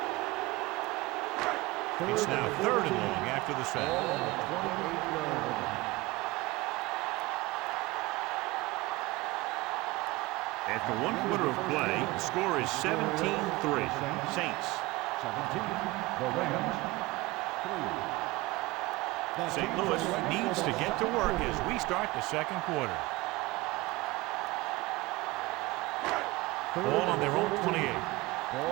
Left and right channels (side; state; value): left; quieter; 21.2 dB